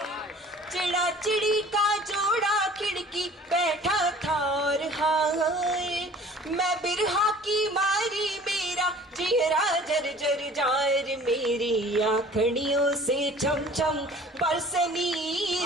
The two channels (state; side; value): normal; both; correlation 0.48